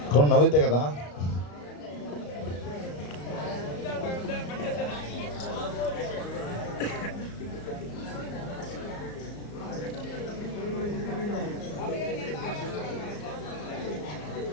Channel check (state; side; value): late; right; 34 ms